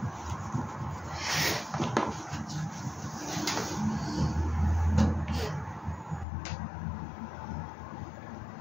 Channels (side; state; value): right; drops out; at 6.2 s